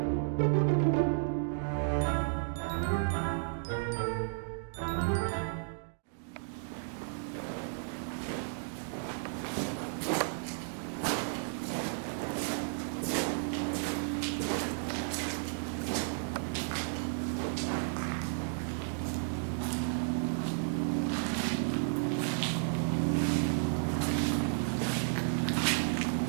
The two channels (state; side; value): silent; left; digital silence